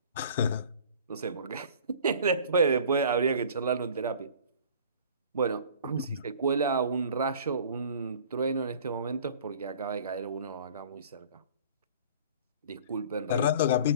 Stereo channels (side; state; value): both; inverted; correlation -0.46